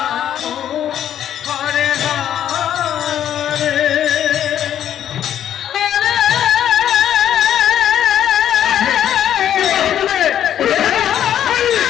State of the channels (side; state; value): right; quieter; 10.4 dB